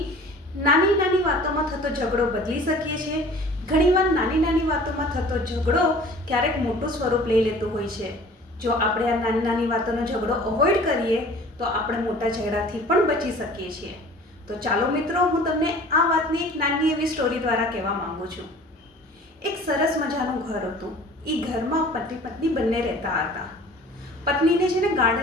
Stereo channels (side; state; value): both; normal; correlation 0.46